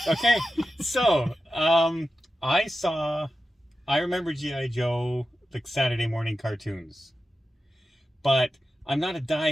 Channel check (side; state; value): both; normal; correlation 0.92